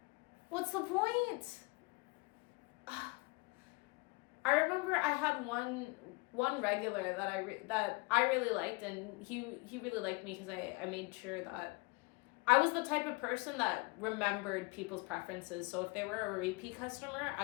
What's the point? I remember I had one regular that I really liked, and he really liked me because I made sure that I was the type of person that remembered people's preferences. So if they were a repeat customer,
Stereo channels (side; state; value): right; quieter; 27.7 dB